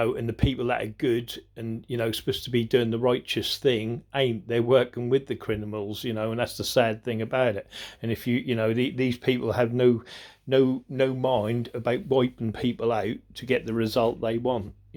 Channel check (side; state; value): both; identical; correlation 1.00